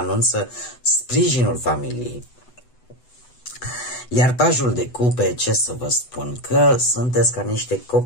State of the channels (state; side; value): late; right; 8.0 ms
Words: sprijinul familiei. Iar pajul de cupe, ce să vă spun, că sunteți ca niște